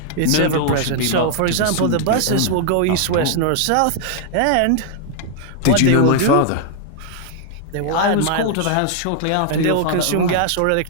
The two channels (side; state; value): both; different; correlation 0.00